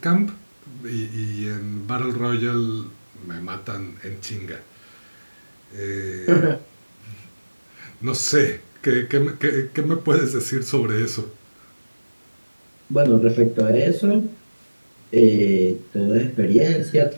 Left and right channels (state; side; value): inverted; both; correlation -1.00